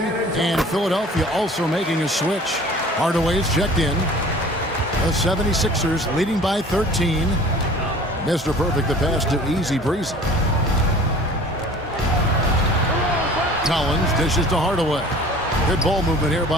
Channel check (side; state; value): both; normal; correlation 0.46